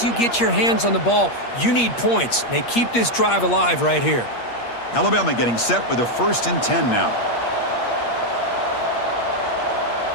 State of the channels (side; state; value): right; late; 8.5 ms